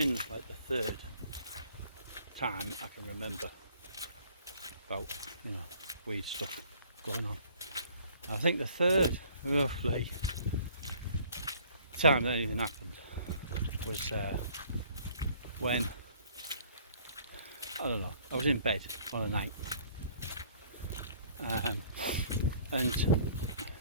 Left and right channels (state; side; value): inverted; both; correlation -0.56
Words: like the third time I can remember about, you know, weed stuff going on. I think the third, roughly, time that anything happened was when, I don't know, I was in bed on a night, and